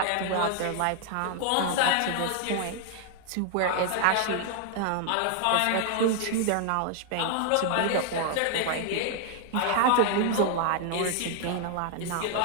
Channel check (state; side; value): different; both; correlation 0.00